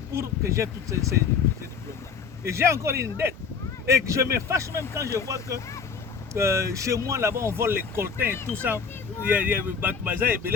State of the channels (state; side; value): quieter; right; 5.8 dB